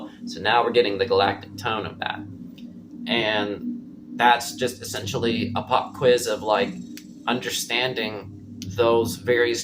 So now we're getting the galactic tone of that. And that's just essentially a pop quiz of like understanding those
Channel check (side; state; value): both; identical; correlation 1.00